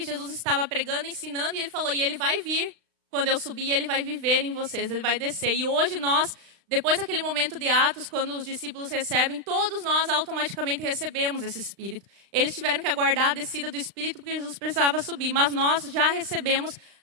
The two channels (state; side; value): late; left; 35 ms